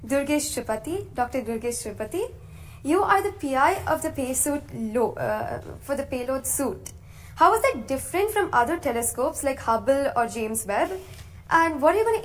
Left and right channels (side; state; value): both; identical; correlation 1.00